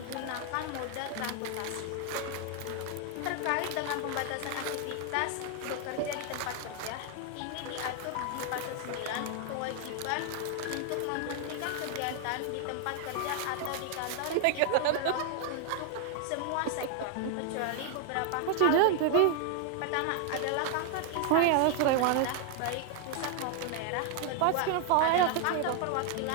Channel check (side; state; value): both; different; correlation 0.00